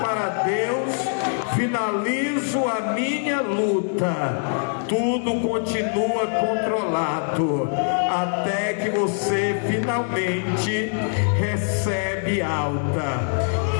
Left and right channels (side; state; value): right; silent; 63 dB below the other